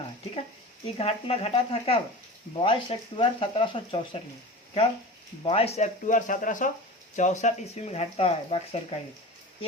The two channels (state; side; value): normal; both; correlation 0.33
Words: है। ठीक है, ये घटना घटा था कब? 22 अक्टूबर 1764 में। कब? 22 अक्टूबर 1764 ईस्वी में घटता है बक्सर का युद्ध।